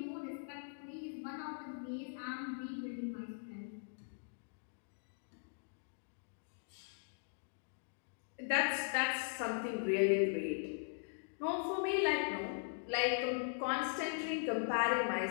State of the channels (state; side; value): silent; right; digital silence